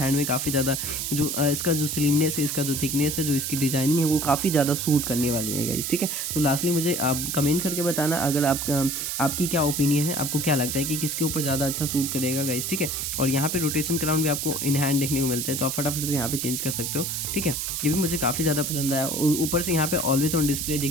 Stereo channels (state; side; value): noise; right; hiss, 2 dB below the sound